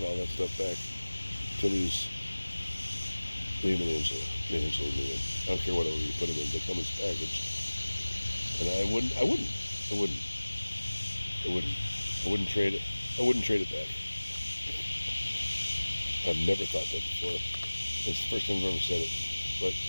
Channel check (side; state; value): both; inverted; correlation -1.00